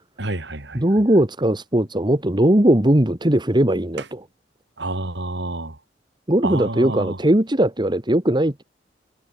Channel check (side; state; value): both; normal; correlation 0.77